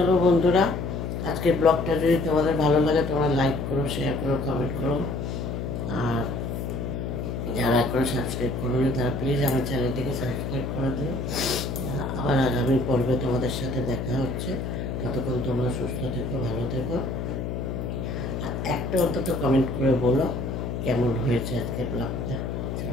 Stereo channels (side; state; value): left; noise; hum, 4 dB below the sound